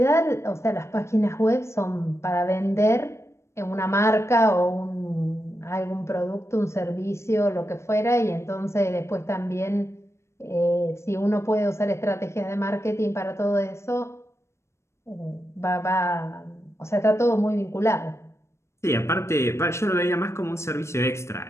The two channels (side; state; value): right; late; 0.13 ms